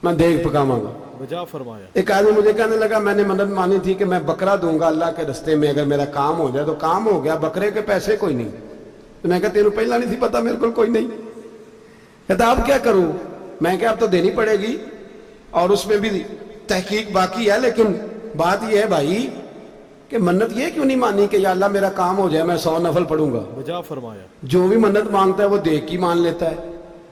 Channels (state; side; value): identical; both; correlation 1.00